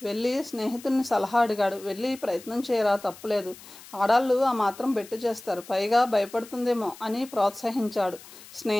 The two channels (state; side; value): noise; left; hiss, 19 dB below the sound